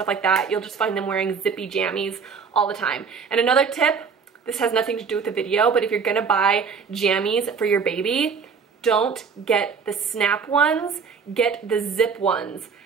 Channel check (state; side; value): quieter; left; 5.8 dB